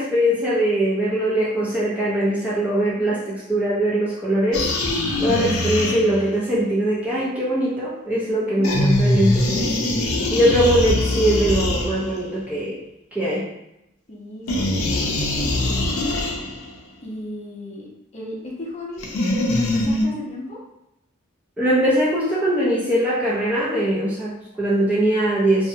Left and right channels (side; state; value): both; normal; correlation 0.61